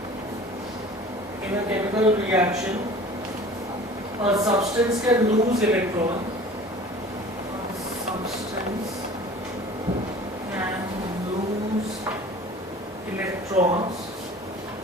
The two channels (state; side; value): normal; both; correlation 0.44